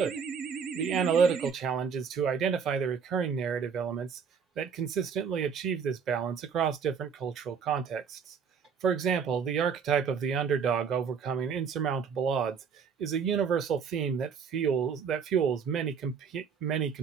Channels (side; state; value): left; quieter; 6.5 dB